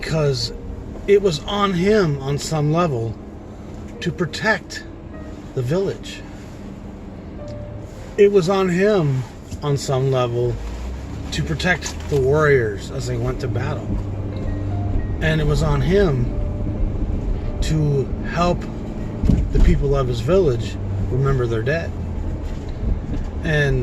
it was on him on some level to protect the village. It was on him on some level to protect the warriors as they went to battle. And it was on him to help the people of his village remember their dead.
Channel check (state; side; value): identical; both; correlation 1.00